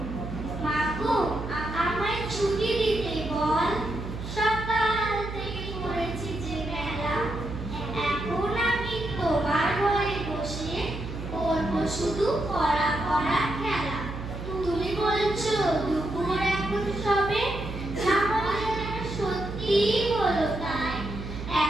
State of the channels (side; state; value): right; noise; hum, 8 dB below the sound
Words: মাগো, আমায় ছুটি দিতে বল, সকাল থেকে পড়েছি যে বেলা, এখন আমি তোমার ঘরে বসে করবো শুধু পড়া পড়া খেলা। তুমি বলছো দুপুর এখন সবে, সত্যি হলো তাই,